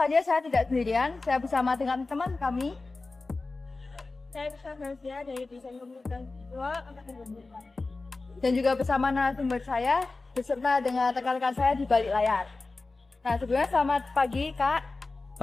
saya tidak sendirian, saya bersama dengan teman kami. Saya bersama Nazia dari desain komunikasi visual angkatan 2024. Dan juga bersama narasumber saya, beserta dengan rekan-rekan saya di balik layar. Nah, sebelumnya selamat pagi, Kak.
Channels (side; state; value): right; quieter; 3.5 dB